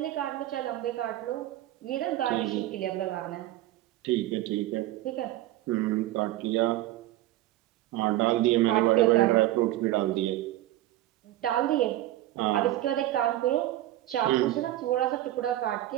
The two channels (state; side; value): quieter; left; 14.9 dB